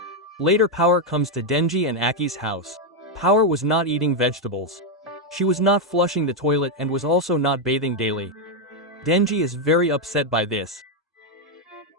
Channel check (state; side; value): normal; both; correlation 0.02